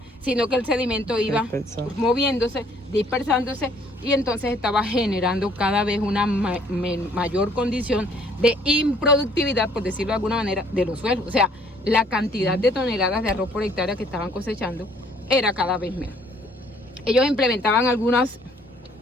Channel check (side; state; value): both; normal; correlation 0.61